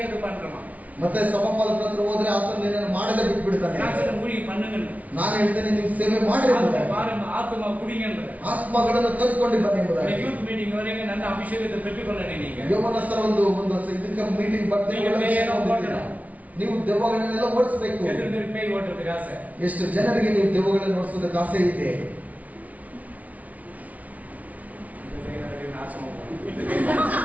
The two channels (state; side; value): late; left; 0.071 ms